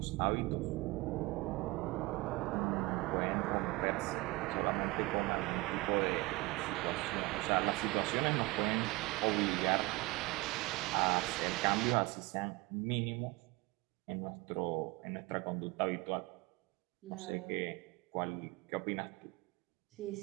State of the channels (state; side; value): quieter; left; 22.8 dB